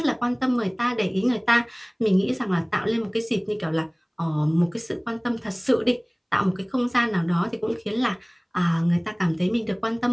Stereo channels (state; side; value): identical; both; correlation 1.00